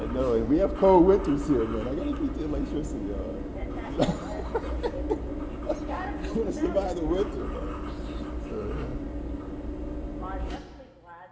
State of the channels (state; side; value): identical; both; correlation 1.00